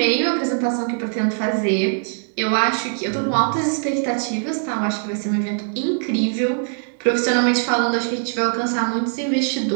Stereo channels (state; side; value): silent; left; digital silence